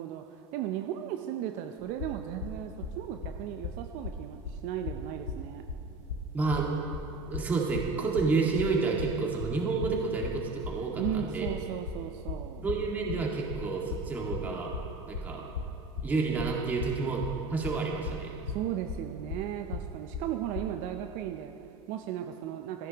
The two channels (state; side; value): quieter; left; 3.7 dB